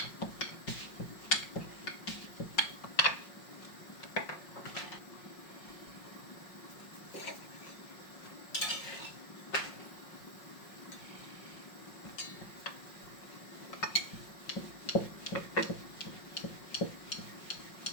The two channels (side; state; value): right; late; 5.5 ms